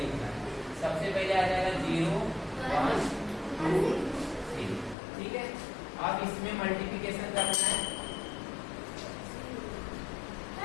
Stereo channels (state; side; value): drops out; right; at 5.0 s